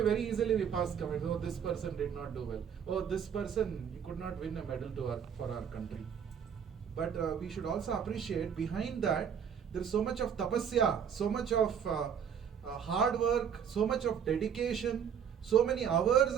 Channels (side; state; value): left; quieter; 7.8 dB